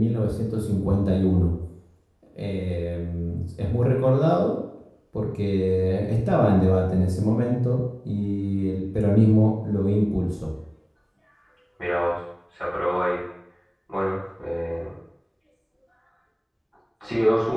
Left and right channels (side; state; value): both; identical; correlation 1.00